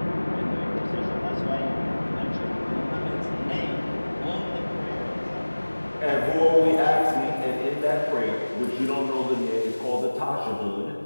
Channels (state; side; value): inverted; both; correlation -1.00